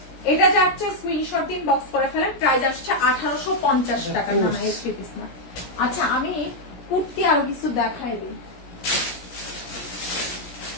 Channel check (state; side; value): late; right; 17 ms